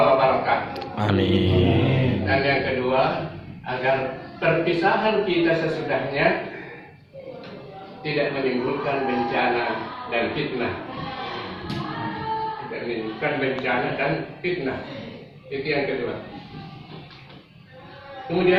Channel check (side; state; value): both; identical; correlation 1.00